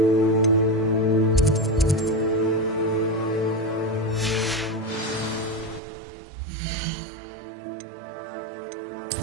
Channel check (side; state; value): left; drops out; at 5.8 s